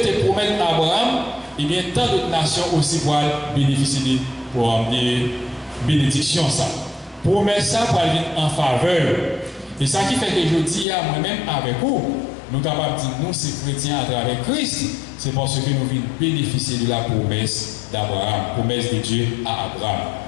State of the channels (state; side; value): drops out; right; at 10.9 s